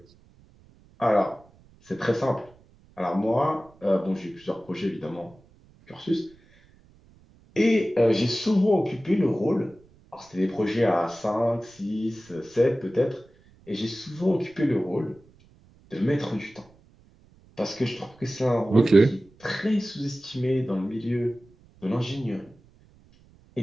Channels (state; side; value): noise; right; rumble, 28 dB below the sound